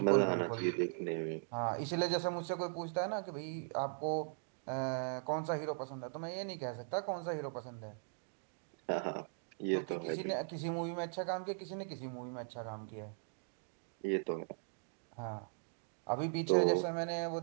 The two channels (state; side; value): silent; left; digital silence